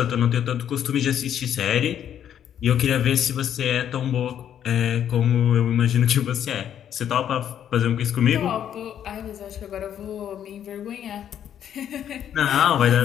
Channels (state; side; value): quieter; right; 9.8 dB